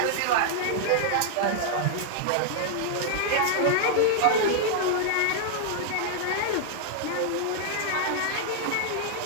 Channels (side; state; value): both; different; correlation 0.00